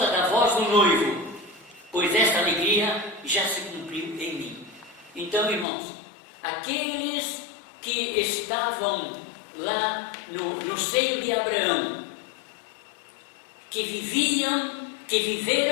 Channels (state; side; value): drops out; right; at 5.7 s